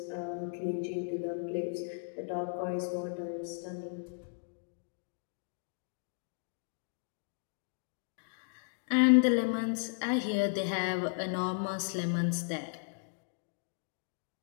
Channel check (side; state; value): right; silent; digital silence